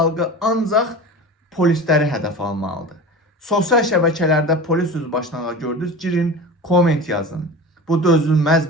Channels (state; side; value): normal; both; correlation 0.33